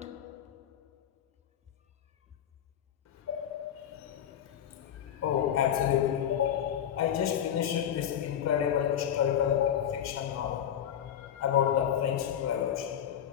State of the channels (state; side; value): quieter; right; 9.7 dB